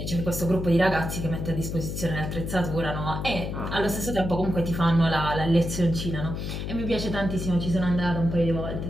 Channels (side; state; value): left; noise; hum, 4 dB below the sound